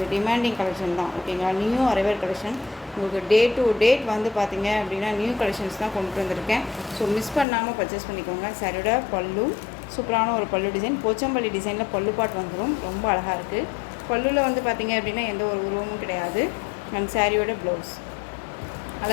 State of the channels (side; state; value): right; drops out; at 7.5 s